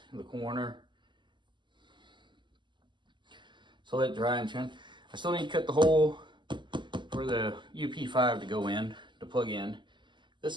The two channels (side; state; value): left; late; 0.22 ms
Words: in the corner. So let it dry and trim. I still need to cut the hole for the UP5 to go in, to plug in.